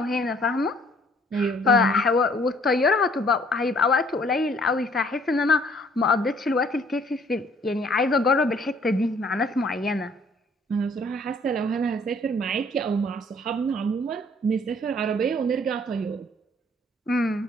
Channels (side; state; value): both; normal; correlation 0.60